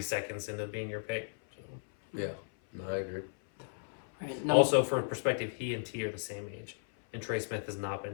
seconds into being your pick. So. Yeah, no, I agree. right, no, Also, for perspective, he and T are the same age, and Trey Smith has not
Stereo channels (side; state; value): right; silent; 55 dB below the other